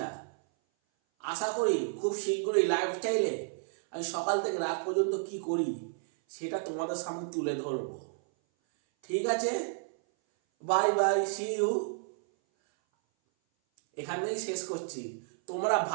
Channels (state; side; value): silent; left; 57 dB below the other